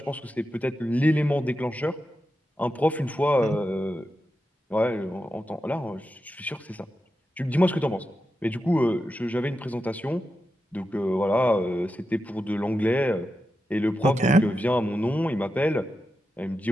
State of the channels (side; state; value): both; normal; correlation 0.89